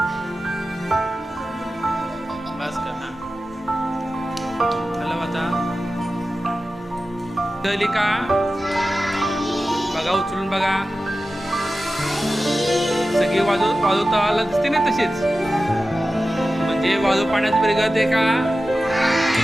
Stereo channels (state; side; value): normal; both; correlation 0.94